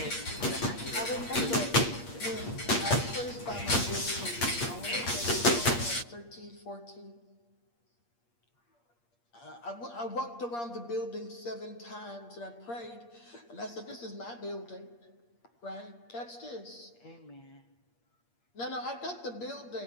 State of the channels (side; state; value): right; late; 8.5 ms